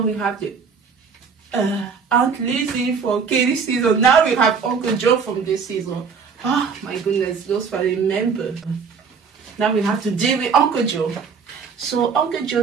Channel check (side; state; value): left; quieter; 5.8 dB